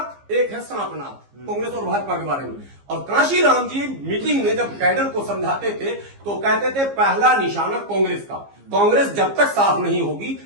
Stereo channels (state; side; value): late; left; 15 ms